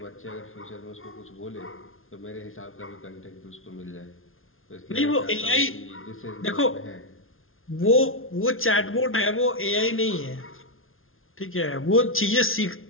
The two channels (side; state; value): right; late; 0.60 ms